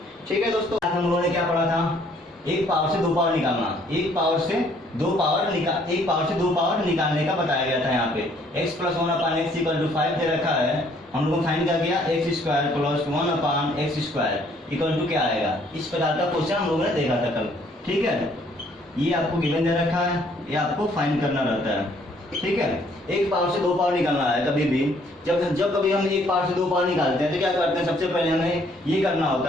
ठीक है दोस्तों, आज हम लोगों ने क्या पढ़ा था? एक पावर से दो पावर निकालना, एक पावर से दो पावर निकालने का बताया गया था। यहाँ पे x + 1/x = 5 दे रखा है। हम लोगों ने फाइंड क्या किया? x² + 1/x² = क्या आएगा? इस प्रकार का क्वेश्चन हम लोगों ने देखा था कल। ठीक है, ये आपको गिवन दे रखा है, ये आपको फाइंड करना रहता है। ठीक है, एक पावर से दो पावर निकालना है। कभी भी जब कभी हम एक पावर से दो पावर निकालते हैं तो क्या करते हैं? सबसे पहले हमें ये करना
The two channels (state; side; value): normal; both; correlation 0.63